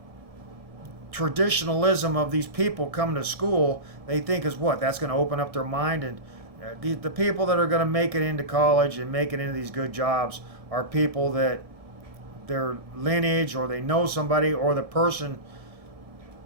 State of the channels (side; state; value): left; late; 1.7 ms